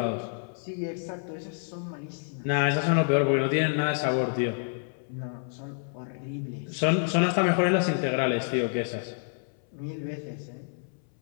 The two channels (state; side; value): silent; right; 59 dB below the other